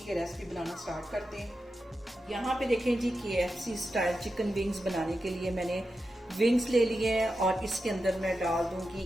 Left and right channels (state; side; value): normal; both; correlation 0.90